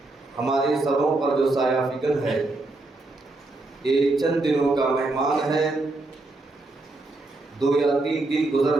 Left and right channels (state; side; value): quieter; left; 3.0 dB